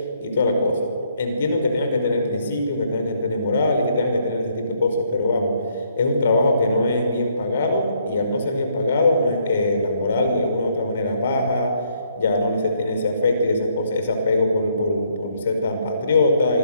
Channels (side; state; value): both; inverted; correlation -0.70